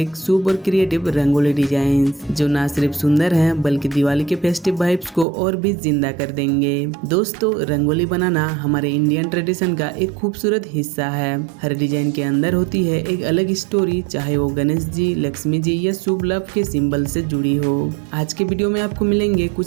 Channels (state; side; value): drops out; left; at 5.2 s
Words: शुभ और क्रिएटिव रंगोली डिजाइन्स, जो ना सिर्फ सुंदर हैं बल्कि दिवाली के फेस्टिव वाइब्स को और भी जिंदा कर देंगे। दोस्तों, रंगोली बनाना हमारे इंडियन ट्रेडिशन का एक खूबसूरत हिस्सा है। हर डिजाइन के अंदर होती है एक अलग स्टोरी, चाहे वो गणेश जी, लक्ष्मी जी या शुभ लव के सिंबल से जुड़ी हो। आज के वीडियो में आपको मिलेंगे कुछ